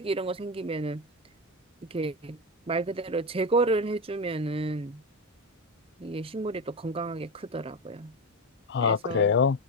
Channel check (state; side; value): normal; both; correlation 0.15